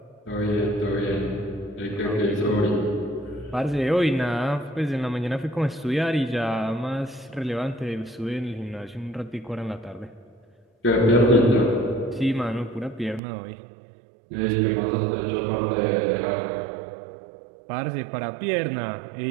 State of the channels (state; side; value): drops out; left; at 13.2 s